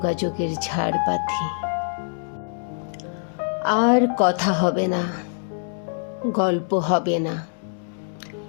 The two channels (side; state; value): right; silent; digital silence